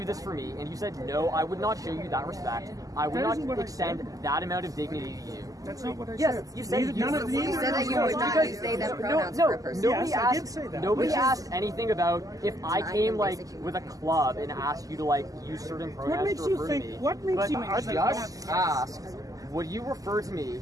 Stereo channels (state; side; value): late; left; 0.17 ms